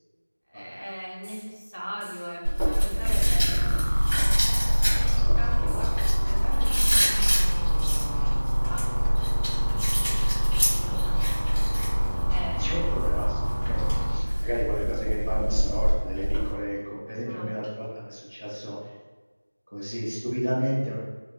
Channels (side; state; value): both; inverted; correlation -1.00